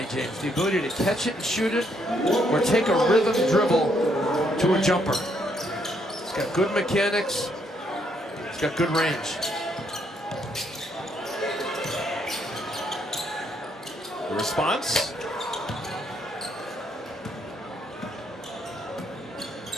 James. The ability to catch it and shoot it, or take a rhythm dribble to a jumper. He's got good mechanics. He's got good range. The response?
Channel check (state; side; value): normal; both; correlation 0.72